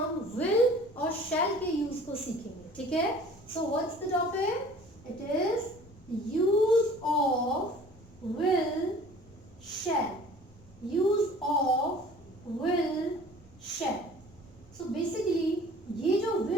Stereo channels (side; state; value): left; noise; rumble, 25 dB below the sound